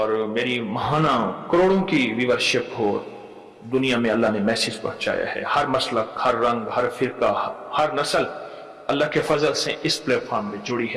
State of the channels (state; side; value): identical; both; correlation 1.00